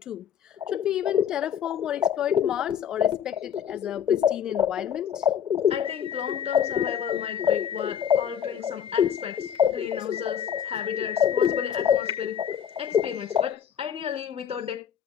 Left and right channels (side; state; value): right; quieter; 8.6 dB